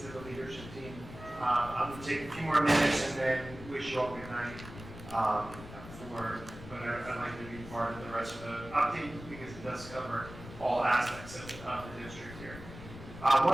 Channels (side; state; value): left; noise; rumble, 14 dB below the sound